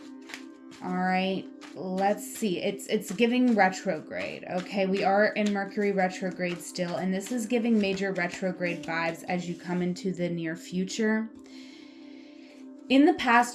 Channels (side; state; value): both; identical; correlation 1.00